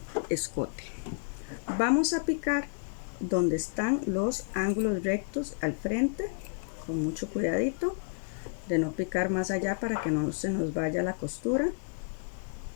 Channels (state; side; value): silent; right; 57 dB below the other